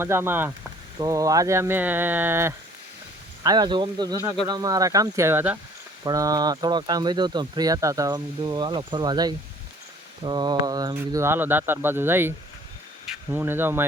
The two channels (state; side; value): normal; both; correlation 0.54